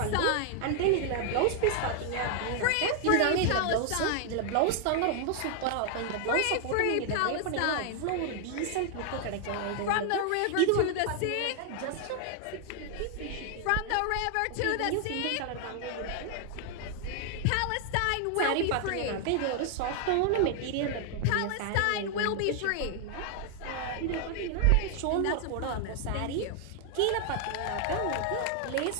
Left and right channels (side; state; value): both; different; correlation 0.00